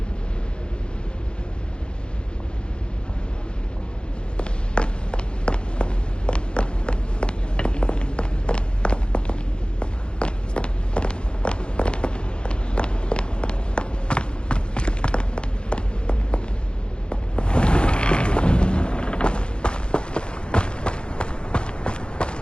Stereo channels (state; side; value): late; right; 0.053 ms